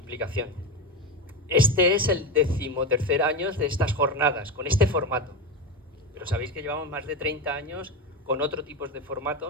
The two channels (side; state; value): both; normal; correlation 0.19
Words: Este es el 13º año de estas jornadas, con este formato. Pero sabéis que llevamos más de 30 años con otro tipo de